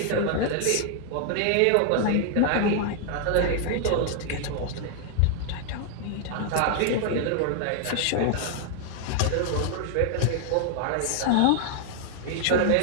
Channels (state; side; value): different; both; correlation 0.00